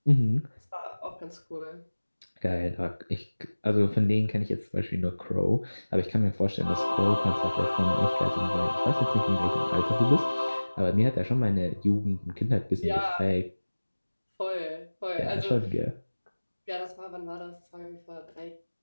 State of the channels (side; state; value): both; inverted; correlation -1.00